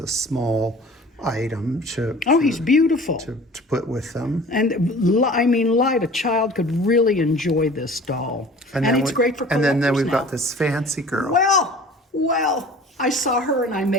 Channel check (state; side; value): normal; both; correlation 0.44